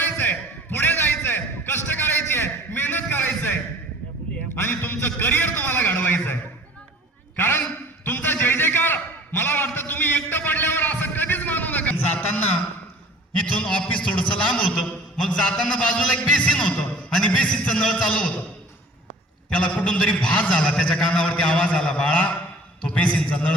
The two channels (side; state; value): both; normal; correlation 0.48